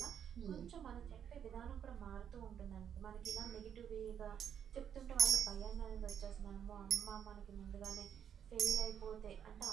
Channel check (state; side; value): quieter; left; 8.7 dB